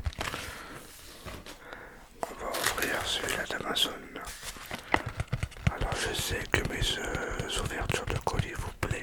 On va ouvrir celui-là d'Amazon. Alors je sais que mes ouvertures de colis vous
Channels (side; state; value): both; identical; correlation 1.00